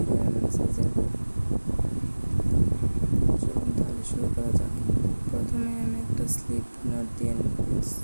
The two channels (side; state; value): both; inverted; correlation -1.00